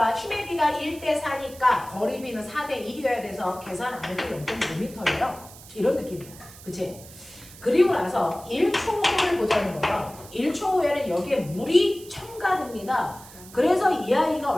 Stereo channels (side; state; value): right; noise; hiss, 19 dB below the sound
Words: 힘의 비가 1대 4니까 거리비는 4대 1이어야 돼서 계산 안 해도 0.5m예요. 이런 느낌이야. 그치? 그리고 나서 1초 후를 보자는 거예요. 1초 후에는 여기에 물이 첨가됩니다. 그래서 이 아이가